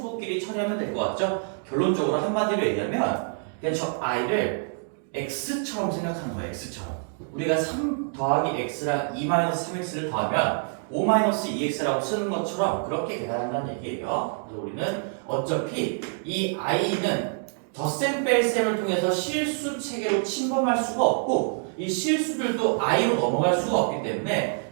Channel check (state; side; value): silent; left; 61 dB below the other